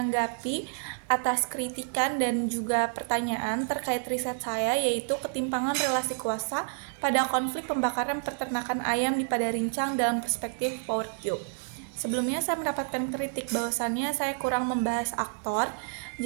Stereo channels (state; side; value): silent; left; digital silence